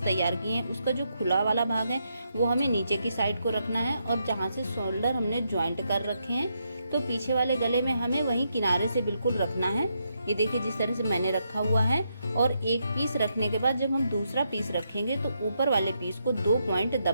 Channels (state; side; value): inverted; both; correlation -0.80